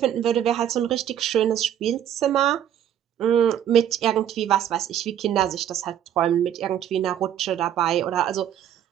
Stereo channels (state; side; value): quieter; left; 10.3 dB